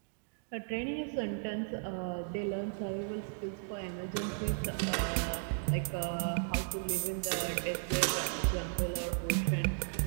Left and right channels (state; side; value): silent; left; digital silence